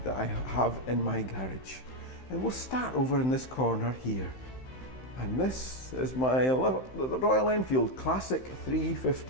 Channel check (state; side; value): late; right; 15 ms